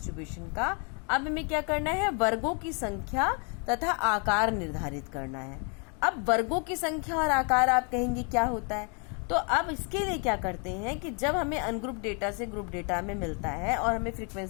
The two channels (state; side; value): quieter; right; 36.7 dB